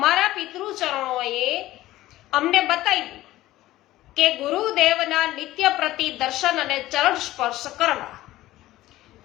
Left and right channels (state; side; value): quieter; right; 16.0 dB